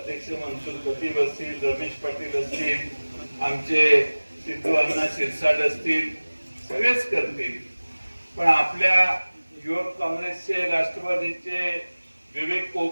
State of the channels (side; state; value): both; inverted; correlation -1.00